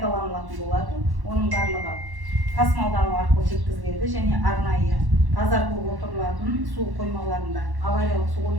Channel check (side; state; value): left; late; 1.1 ms